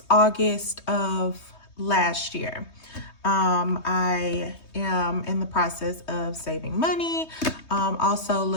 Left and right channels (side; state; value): right; late; 3.2 ms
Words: August of last year. I am in the process of saving money, also